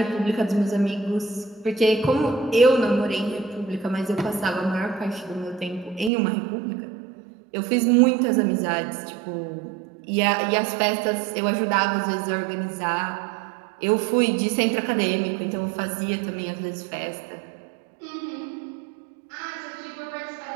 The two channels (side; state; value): left; drops out; at 6.1 s